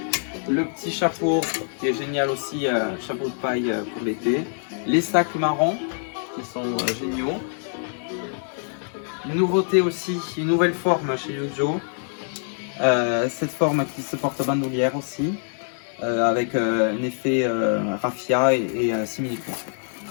Le petit chapeau qui est génial aussi, chapeau de paille pour l'été. Les sacs marrons qui sont géniaux. Une nouveauté aussi, une nouvelle forme chez Yujo. Cette forme qui se porte bandoulière aussi. Avec un effet raffia et simili-cuir.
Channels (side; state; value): right; silent; 62 dB below the other